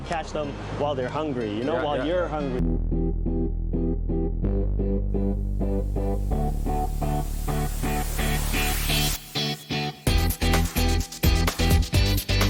catch them while they're hungry, you know, while you're hungry.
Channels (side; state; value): both; identical; correlation 1.00